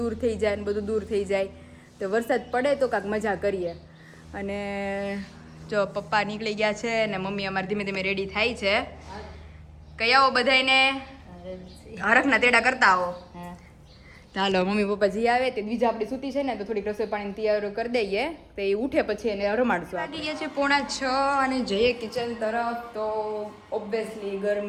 થઈ જાય ને બધું દૂર થઈ જાય તો વરસાદ પડે તો કાંઈક મજા કરીએ અને જો પપ્પા નીકળી ગયા છે ને મમ્મી અમારે ધીમે ધીમે રેડી થાય છે કઈ આવો બધાને હરખના તેડા કરતા આવો હા ચાલો મમ્મી પપ્પા જી આવે તે બીજા આપણી સૂતી છે ને તો થોડીક રસોઈ પાણી તૈયાર કરી દઈએ તો એ ઉઠે પછી એને રમાડશું વાગી ગયા છે 5:45 અને જઈએ કિચન તરફ તો ઓબ્વિયસલી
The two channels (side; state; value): both; identical; correlation 1.00